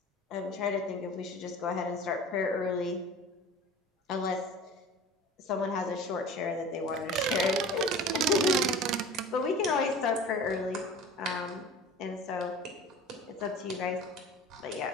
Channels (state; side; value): normal; both; correlation 0.39